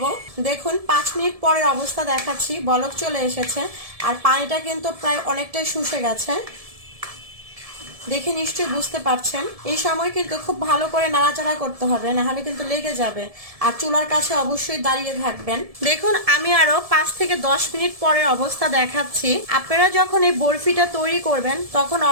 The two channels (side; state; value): left; late; 1.7 ms